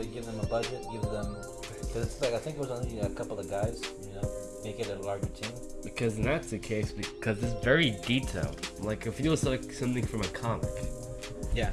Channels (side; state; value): both; identical; correlation 1.00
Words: give them a budget, because it's like I think it was only a couple of guys, make it a larger team. Because that's the case, because it's very detailed. Like, it feels like something from a comic. Yeah.